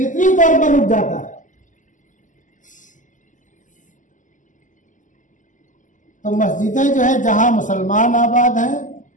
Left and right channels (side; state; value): right; late; 0.37 ms